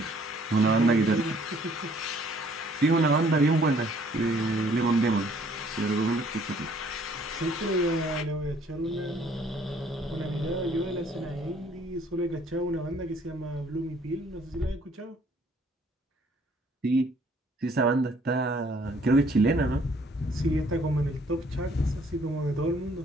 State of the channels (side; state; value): both; normal; correlation 0.61